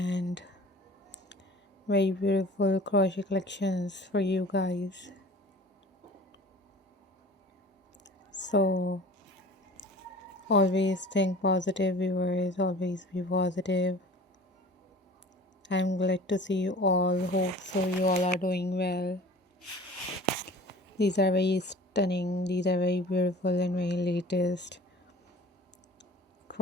very beautiful crochet collections for you guys. So always think positive viewers, always be positive. I'm glad to see you all. Hope so you all are doing well. These are very stunning, these are very beautiful and very latest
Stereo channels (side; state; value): both; normal; correlation 0.43